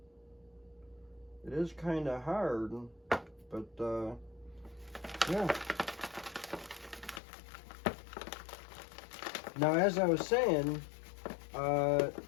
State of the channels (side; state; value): right; drops out; at 7.2 s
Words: It is kind of hard, but yeah. Now, as I was saying,